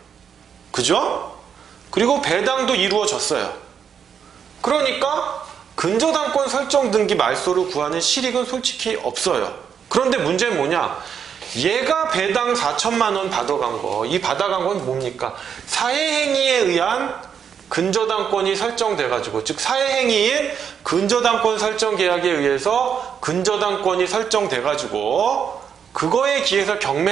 그죠? 그리고 배당도 이루어졌어요. 그러니까 근저당권 설정 등기 말소를 구하는 실익은 솔직히 없어요. 그런데 문제는 뭐냐? 얘가 배당 4,000만 원 받아간 거, 이 받아간 건 뭡니까? 사회행위에 의한 근저당권이 설정돼가지고, 즉 사회행위인 근저당권 설정 계약에 의해서 근저당권이 설정돼가지고 그거에 기해서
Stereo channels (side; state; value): left; quieter; 7.6 dB